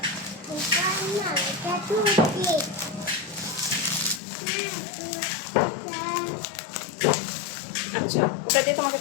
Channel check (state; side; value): drops out; right; at 4.2 s